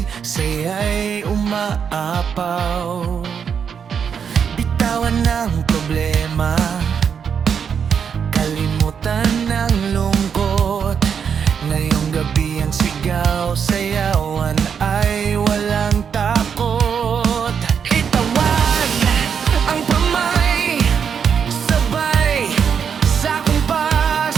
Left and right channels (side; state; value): left; quieter; 7.1 dB